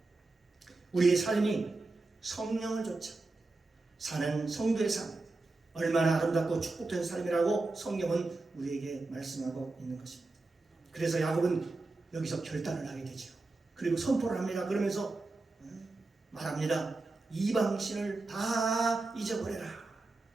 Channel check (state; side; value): quieter; left; 3.4 dB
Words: 우리의 삶이 성령을 좇아 사는 성도의 삶, 얼마나 아름답고 축복된 삶이라고 성경은 우리에게 말씀하고 있는 것입니다. 그래서 야곱은 여기서 결단을 하게 되죠. 그리고 선포를 합니다. 그러면서 말합니다. 이방신을 다 잊어버려라.